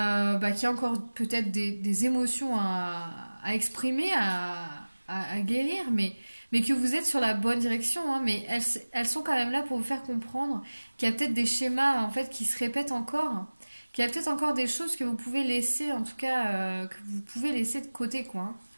qu'il y a encore peut-être des émotions à exprimer, à guérir, mais que vous êtes sur la bonne direction, hein, mais elles sont quand même là pour vous faire comprendre qu'il y a peut-être des schémas en fait qui se répètent encore, qu'il y a peut-être encore des choses que vous pouvez laisser, en tout cas, que vous pouvez laisser de côté, quoi, hein,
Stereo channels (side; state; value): both; inverted; correlation -1.00